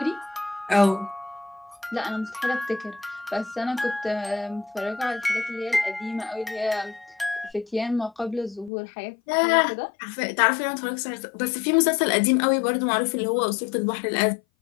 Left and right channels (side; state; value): right; drops out; at 8.7 s